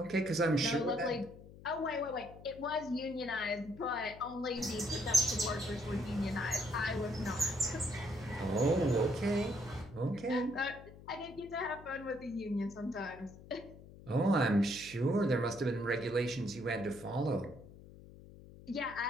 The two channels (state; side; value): noise; left; hum, 18 dB below the sound